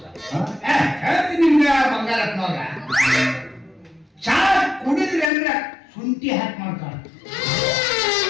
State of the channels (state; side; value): drops out; right; at 5.3 s